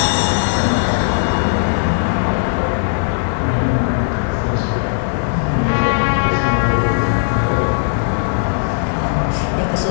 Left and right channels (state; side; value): silent; right; digital silence